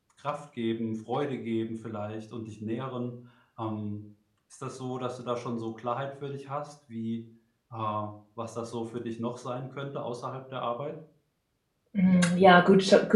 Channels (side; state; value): both; identical; correlation 1.00